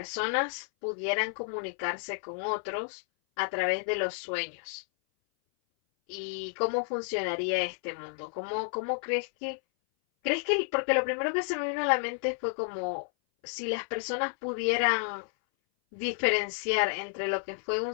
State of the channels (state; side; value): silent; right; 57 dB below the other